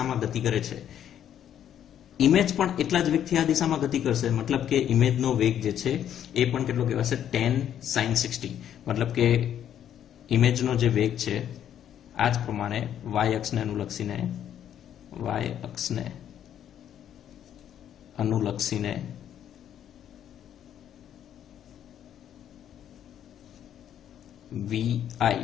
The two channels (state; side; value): quieter; right; 10.1 dB